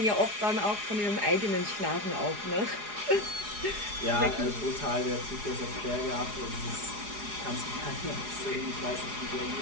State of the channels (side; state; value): left; late; 4.8 ms